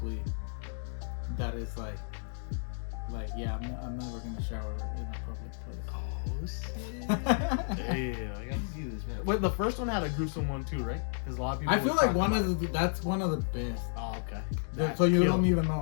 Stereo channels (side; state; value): right; silent; digital silence